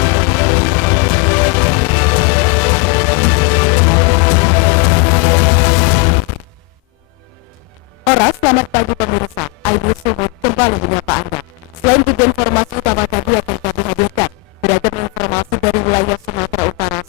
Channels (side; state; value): right; quieter; 29.0 dB